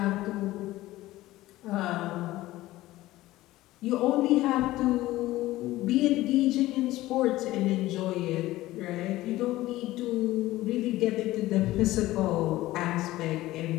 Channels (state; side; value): quieter; right; 16.9 dB